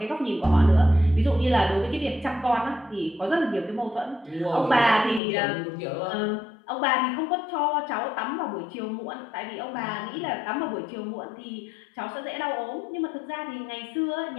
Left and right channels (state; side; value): drops out; right; at 5.2 s